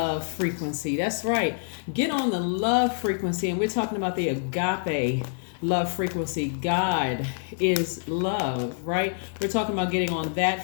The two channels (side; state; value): right; silent; digital silence